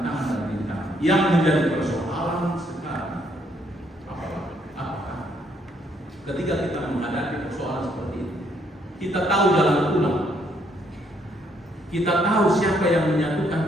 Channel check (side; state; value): both; normal; correlation 0.70